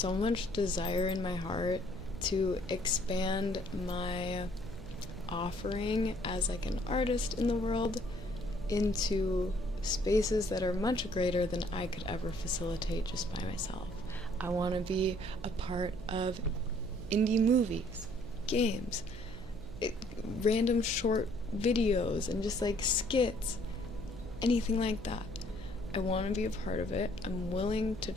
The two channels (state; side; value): noise; right; hum, 15 dB below the sound